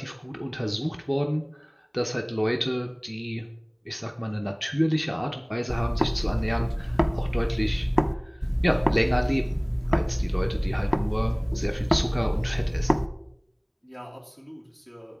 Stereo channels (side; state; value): both; identical; correlation 1.00